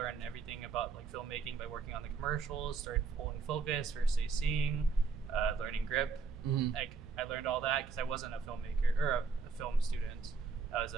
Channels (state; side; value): quieter; left; 4.9 dB